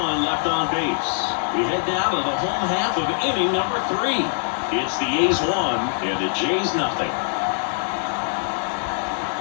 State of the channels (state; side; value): silent; right; 55 dB below the other